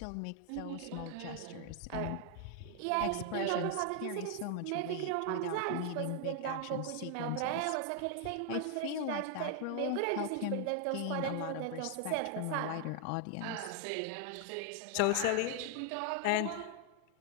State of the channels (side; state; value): both; different; correlation 0.00